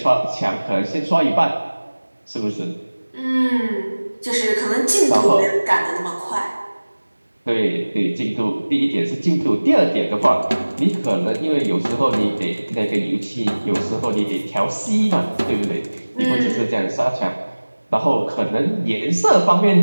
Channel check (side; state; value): both; inverted; correlation -1.00